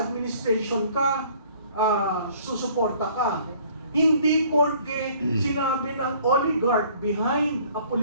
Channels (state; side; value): inverted; both; correlation -0.56